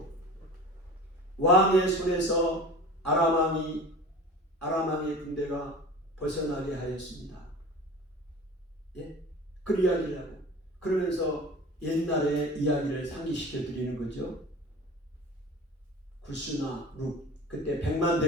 왕의 손에서 아람 왕의 군대가 벗어나게 하였습니다. 예? 그 이야기라고. 그러면서 옛날의 이야기를 상기시켜 드리는 거죠. 구스나 룩, 그때 100만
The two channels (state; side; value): normal; both; correlation 0.38